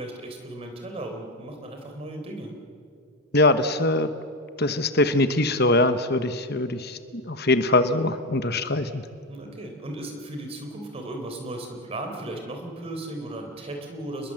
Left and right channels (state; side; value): normal; both; correlation 0.13